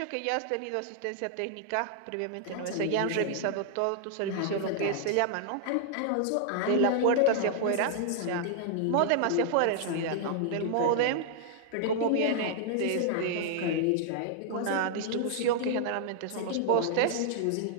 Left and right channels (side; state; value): both; different; correlation -0.01